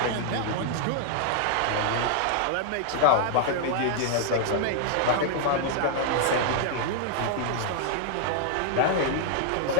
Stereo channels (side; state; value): both; different; correlation -0.01